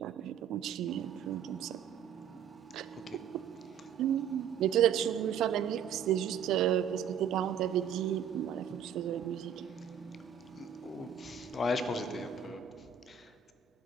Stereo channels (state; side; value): quieter; left; 7.8 dB